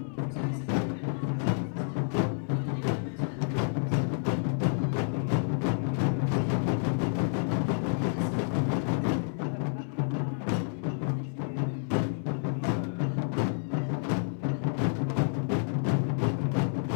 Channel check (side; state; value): right; silent; 58 dB below the other